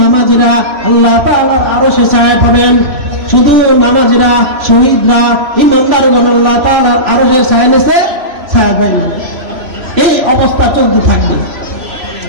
নামাজিরা আল্লাহ তাআলার আরশের ছায়া পাবেন। শুধু নামাজিরা, শহীদরা, ইমানদারগণ আল্লাহ তাআলার আরশের ছায়া নিচে ছায়া পাবেন। এই অবস্থা চলতে থাকবে।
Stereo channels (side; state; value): left; late; 3.0 ms